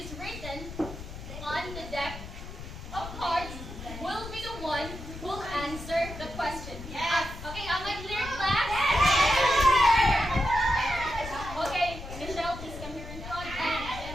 written on the deck of cards will be the one who will answer the question. Yes. Okay, am I clear, class? Okay, Michelle, please come here in front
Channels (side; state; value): left; noise; rumble, 11 dB below the sound